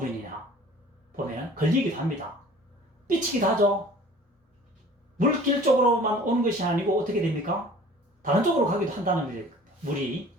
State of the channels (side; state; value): both; normal; correlation 0.48